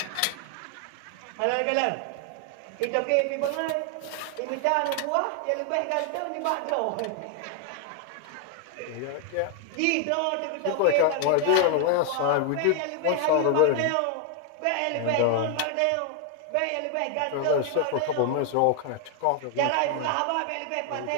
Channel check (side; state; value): both; different; correlation 0.00